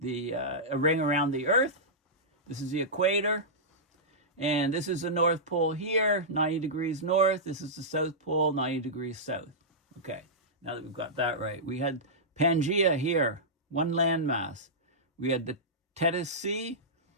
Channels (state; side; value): normal; both; correlation -0.13